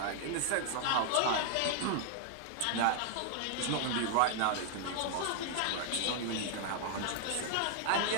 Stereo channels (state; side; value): different; both; correlation 0.00